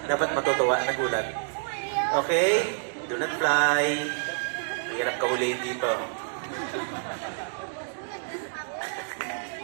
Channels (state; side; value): silent; left; digital silence